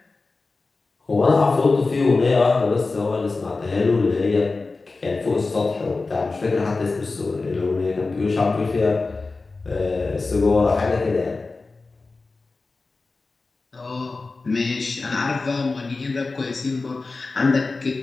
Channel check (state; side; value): quieter; right; 3.7 dB